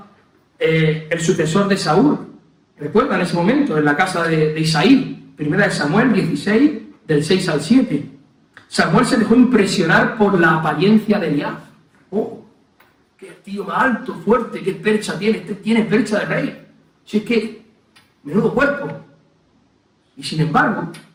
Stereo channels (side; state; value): both; identical; correlation 1.00